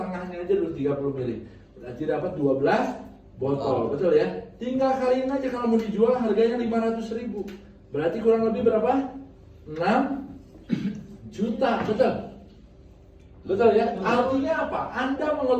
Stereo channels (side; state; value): both; identical; correlation 1.00